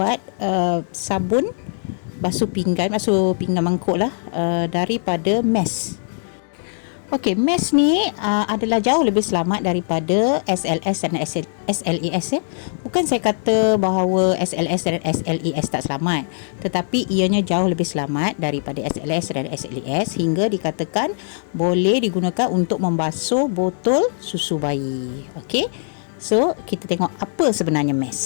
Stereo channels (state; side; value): silent; right; digital silence